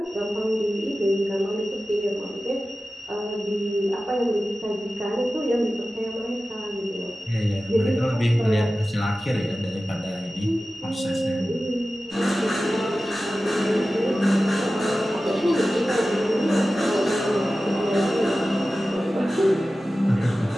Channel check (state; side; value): normal; both; correlation 0.95